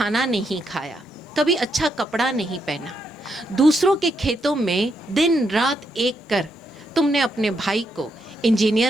नहीं खाया, कभी अच्छा कपड़ा नहीं पहना, दूसरों के खेतों में दिन रात एक कर तुमने अपने भाई को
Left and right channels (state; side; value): normal; both; correlation 0.79